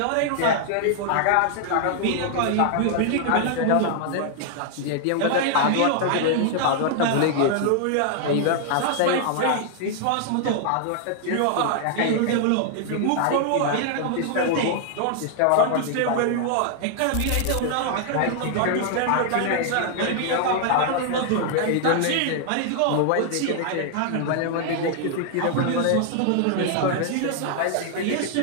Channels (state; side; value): different; both; correlation 0.00